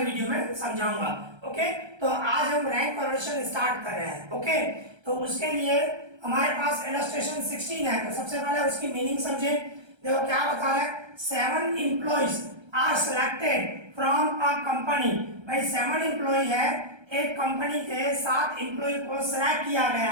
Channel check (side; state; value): left; late; 1.3 ms